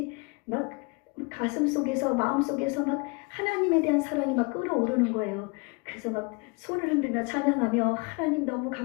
막 가슴 속에서 마음 속에서 막 하나님에 대한 사랑이 막 끌어오르는 거예요. 그래서 막 손을 흔들며 찬양하며 하나님 너무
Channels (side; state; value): right; quieter; 29.8 dB